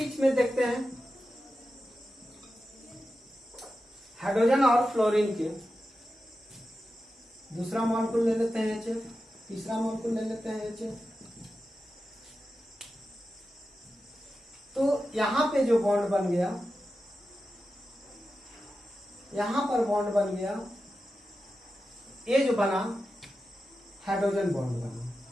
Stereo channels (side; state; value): both; normal; correlation 0.91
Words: में देखते हैं हाइड्रोजन और फ्लोरीन के, दूसरा मॉलिक्यूल ले लेते हैं HF, तीसरा मॉलिक्यूल ले लेते हैं HF। तो यहां पे जो बॉन्ड बन गया, यहां पर बॉन्ड बन गया, ये जो बना हाइड्रोजन बॉन्ड बना।